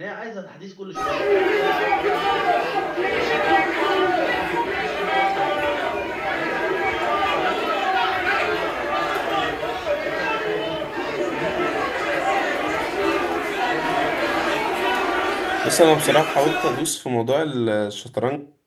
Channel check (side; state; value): both; identical; correlation 1.00